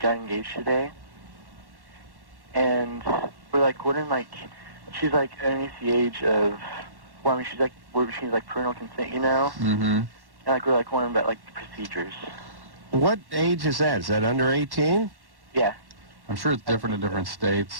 engaged today. And we're, like, wondering, like, she's, like, underneath the age of, well, I mean, she's, like, parental consent, you know? Mm-hmm. And, like, we're, like, wondering about, like, the procedures. What age is that? Is that under 18? Yeah. I'm sure it's different in different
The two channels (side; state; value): left; late; 1.1 ms